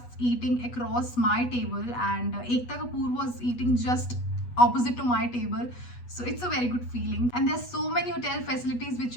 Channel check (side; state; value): right; late; 8.2 ms